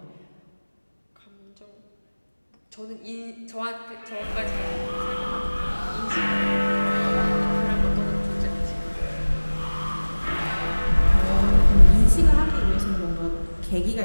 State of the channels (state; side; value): inverted; both; correlation -1.00